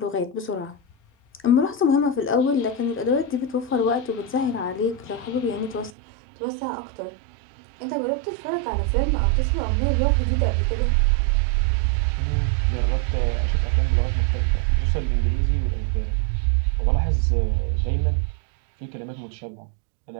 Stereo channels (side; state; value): left; drops out; at 5.9 s